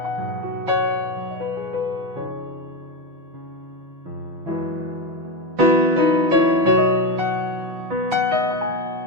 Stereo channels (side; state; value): left; late; 6.2 ms